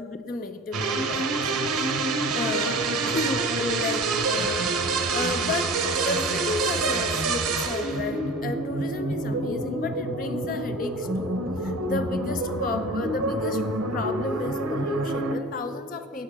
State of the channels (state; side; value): normal; both; correlation 0.38